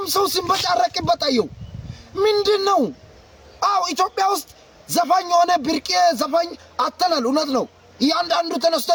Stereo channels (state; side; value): identical; both; correlation 1.00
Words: ሰው ሲንበጫረቅበት አየው ምንድነው? አው ኢትዮጵያ ውስጥ ዘፋኝ ሆነ ብርቄ ዘፋኝ አተናል እውነት ነው። ያንዳንዱ ተነስቶ